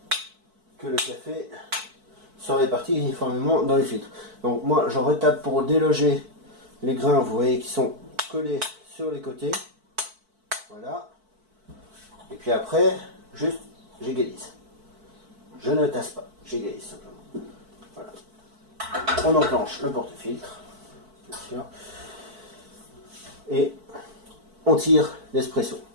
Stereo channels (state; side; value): late; left; 4.5 ms